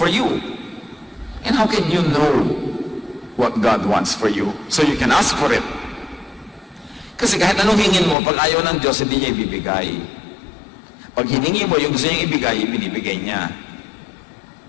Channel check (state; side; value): drops out; right; at 8.2 s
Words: you? And how can you know what God wants for you so you can ask for it? Kasi kahit anong hingin mo, pag ayaw ng Diyos, hindi niya ibibigay. Pag hiningi mo yung gusto niyang ibigay, ibinibigay niya.